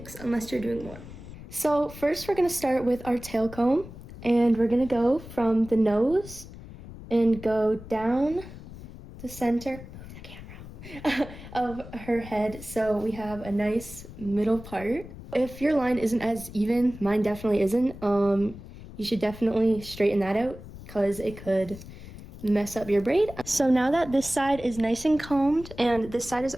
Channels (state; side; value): noise; left; rumble, 15 dB below the sound